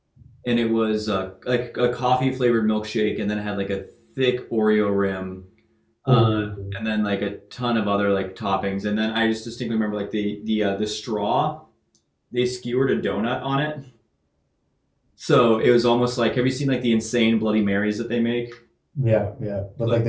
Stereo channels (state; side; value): identical; both; correlation 1.00